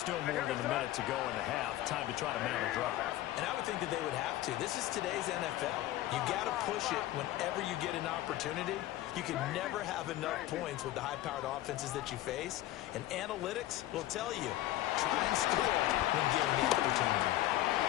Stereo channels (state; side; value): quieter; right; 15.1 dB